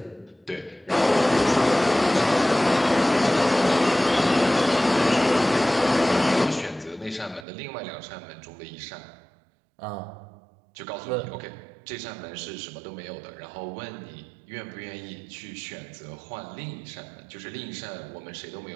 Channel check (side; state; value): left; drops out; at 7.5 s